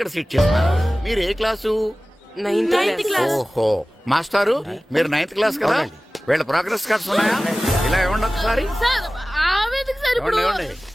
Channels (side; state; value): both; normal; correlation 0.97